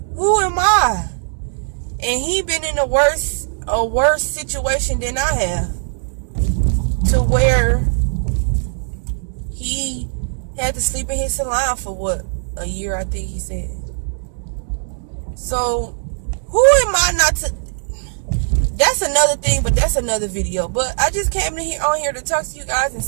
am I? And he been in a worse situation than I have, to where he had to sleep in his salon for what, a year, I think he said. So who am I not to? That's another thing, but that's another video. But I just came on here to talk to you guys and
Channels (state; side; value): silent; left; digital silence